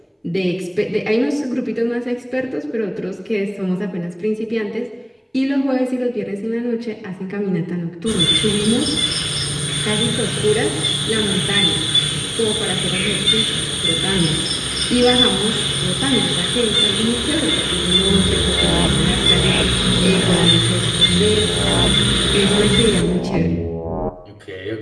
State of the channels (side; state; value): both; identical; correlation 1.00